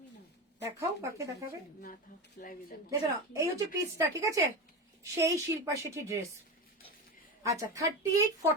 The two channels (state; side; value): normal; both; correlation 0.22